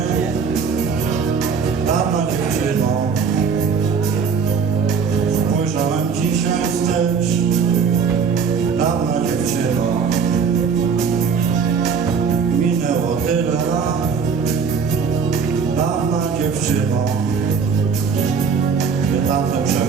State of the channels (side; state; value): left; quieter; 5.9 dB